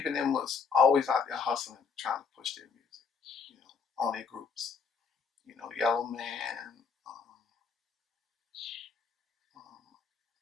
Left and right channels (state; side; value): quieter; right; 5.6 dB